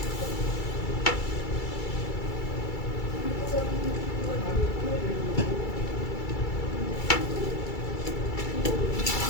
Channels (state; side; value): late; right; 2.3 ms